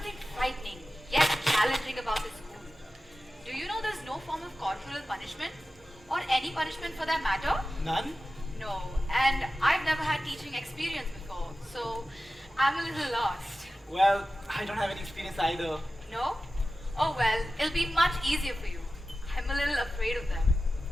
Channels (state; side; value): normal; both; correlation 0.94